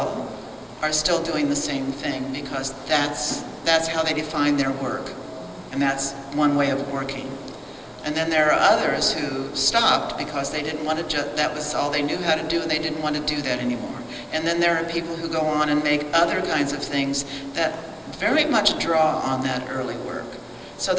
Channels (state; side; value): identical; both; correlation 1.00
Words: are still doing the same thing because that's how they define their work. And that's one way of working. And then there are others who stopped because they didn't want to, that was all they knew how to do and they didn't want to do that anymore. And then there are people who go on and make other kinds of things that very much draw on that early work. So